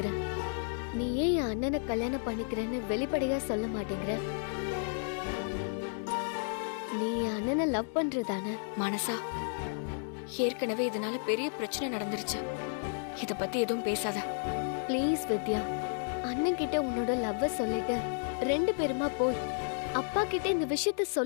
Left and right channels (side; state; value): right; silent; 56 dB below the other